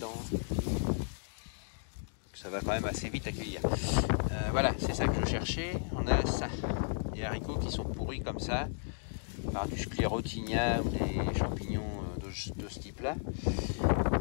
Ça va quand même assez vite à cueillir. Voilà, c'est ça que je cherchais. On a ça, des haricots qui sont pourris comme ça, par du sclérotinia ou des champignons de ce type-là.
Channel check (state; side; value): silent; right; digital silence